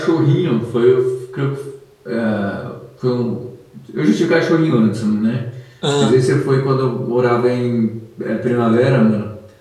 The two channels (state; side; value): identical; both; correlation 1.00